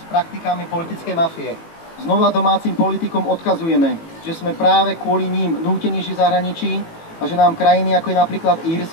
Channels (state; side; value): late; right; 18 ms